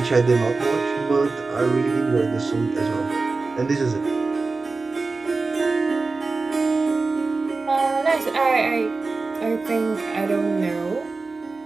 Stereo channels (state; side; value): quieter; left; 3.9 dB